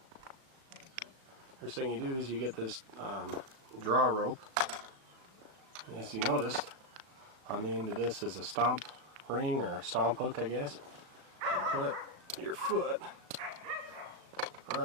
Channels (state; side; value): late; left; 37 ms